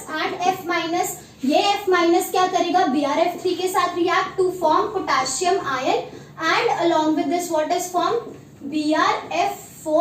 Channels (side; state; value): both; identical; correlation 1.00